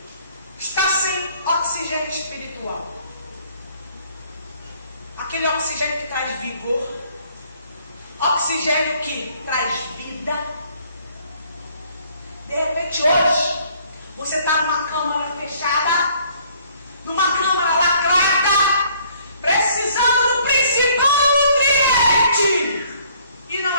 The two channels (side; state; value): both; inverted; correlation -0.61